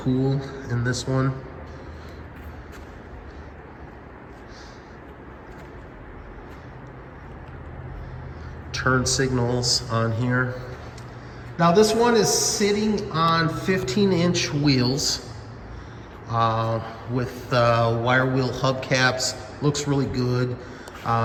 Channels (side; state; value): both; identical; correlation 1.00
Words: in this one. Turn signals on here. Now this one is sitting on 15-inch wheels with wire wheel hubcaps. Looks really good.